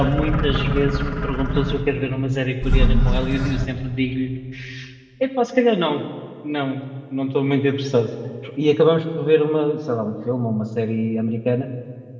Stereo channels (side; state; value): both; identical; correlation 1.00